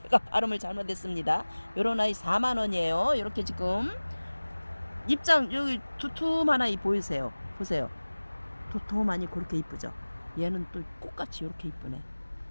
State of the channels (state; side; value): inverted; both; correlation -1.00